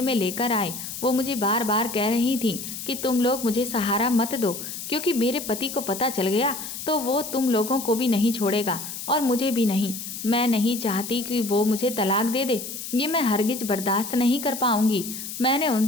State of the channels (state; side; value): noise; left; hiss, 8 dB below the sound